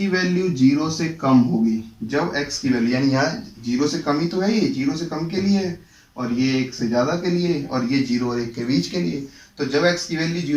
वैल्यू 0 से कम होगी, जब x की वैल्यू यानी यहाँ 0 से कम ही तो है, ये 0 से कम के लिए है और ये 1 से ज्यादा के लिए और ये 0 और 1 के बीच के लिए। तो जब x की वैल्यू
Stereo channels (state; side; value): identical; both; correlation 1.00